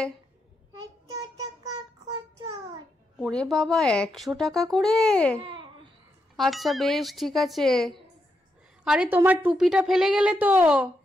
ওরে বাবা, 100 টাকা করে? আচ্ছা বেশ, ঠিক আছে। আরে তোমার টুপিটা ফেলে গেলে তো,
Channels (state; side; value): normal; both; correlation 0.83